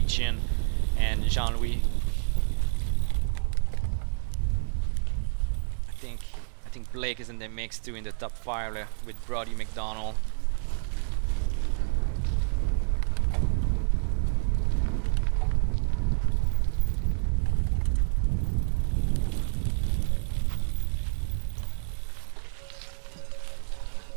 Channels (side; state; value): left; silent; digital silence